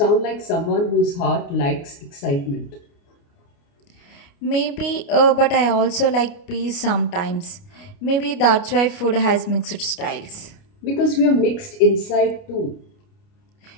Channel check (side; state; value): right; late; 29 ms